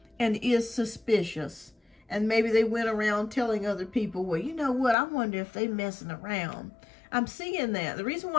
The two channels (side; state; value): right; drops out; at 5.0 s